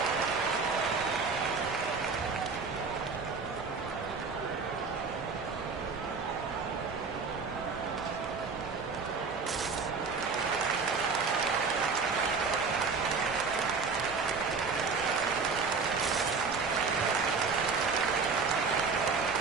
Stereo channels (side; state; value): left; quieter; 4.8 dB